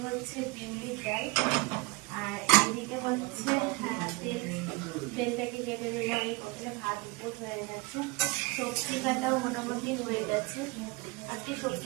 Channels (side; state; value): left; quieter; 25.7 dB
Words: হচ্ছে বিউলির ডাল। আর এইদিকে হচ্ছে তেলটাকে কেটে দিলাম, এই কতটা ভাত উপর হয়ে গেছে। সবজি কাটাও মোটামুটি হয়ে গেছে। আজকে সবজি